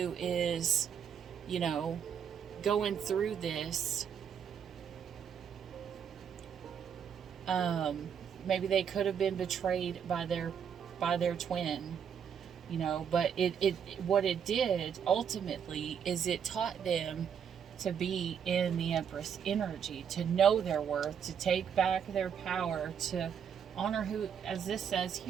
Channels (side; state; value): left; quieter; 7.8 dB